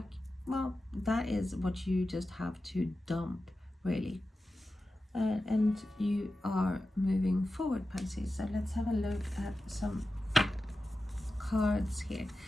well, that is what you just have to dump, really. And you are moving forward, Pisces. So let's have a look at some cards here.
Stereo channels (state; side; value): normal; both; correlation 0.93